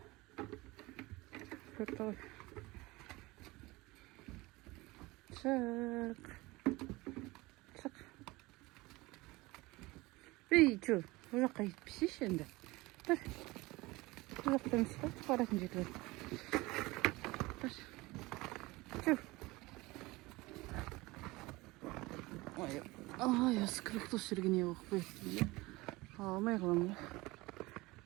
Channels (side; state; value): left; quieter; 21.6 dB